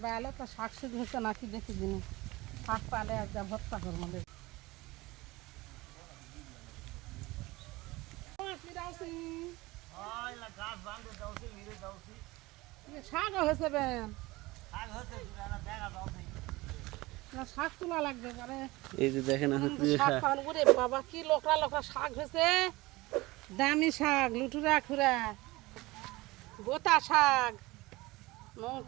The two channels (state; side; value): quieter; left; 20.9 dB